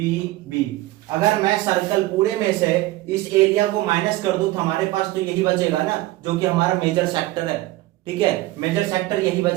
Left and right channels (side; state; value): left; quieter; 17.9 dB